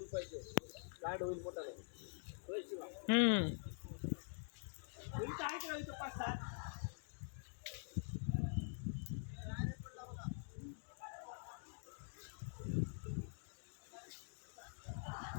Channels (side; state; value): right; silent; digital silence